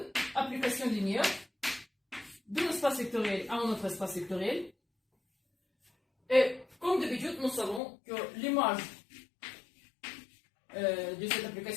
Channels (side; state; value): right; drops out; at 7.8 s